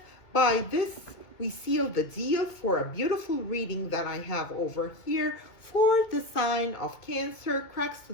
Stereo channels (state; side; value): late; right; 2.2 ms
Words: By this, we seal the deal for a beautiful reading that I have over here for the sign of Cancer, Cracks to